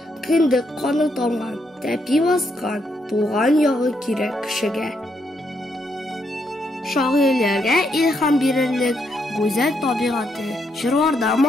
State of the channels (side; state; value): both; normal; correlation 0.77